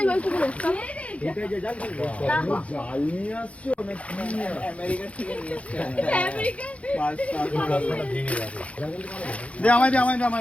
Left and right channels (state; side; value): late; right; 0.064 ms